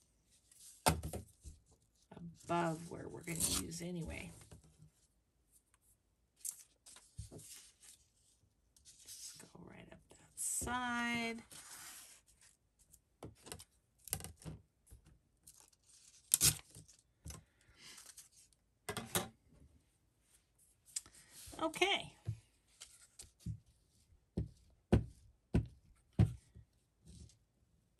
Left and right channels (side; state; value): both; identical; correlation 1.00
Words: above where we're going to use anyway. Just go right up that side. Okay.